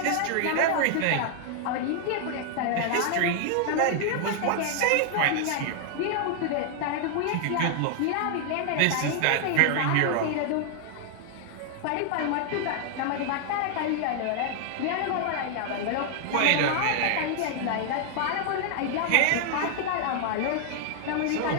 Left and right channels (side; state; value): both; different; correlation 0.00